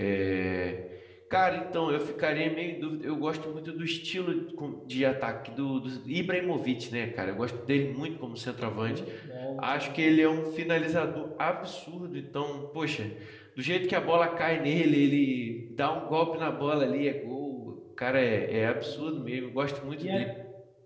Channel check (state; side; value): identical; both; correlation 1.00